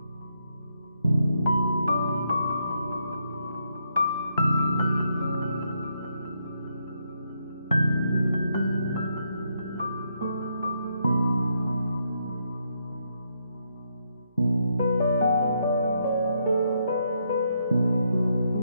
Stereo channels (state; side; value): inverted; both; correlation -0.78